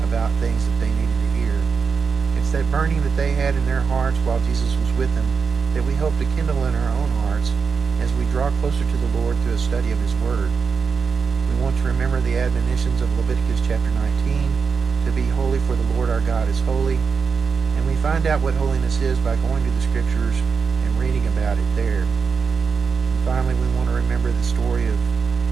about things that they needed to hear. It's that burning that they had in their hearts while Jesus was with them that we hope to kindle in our own hearts as we draw closer to the Lord through a study of His Word. We want to remember the admonitions of Leviticus chapter 19, to be holy for the Lord our God is holy, and we find out what holiness is by going to the Scriptures and reading about it there. And finally, we want to remember the story of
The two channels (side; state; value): left; quieter; 5.6 dB